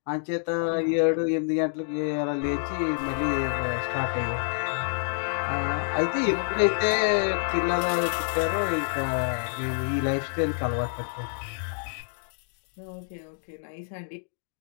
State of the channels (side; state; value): right; silent; digital silence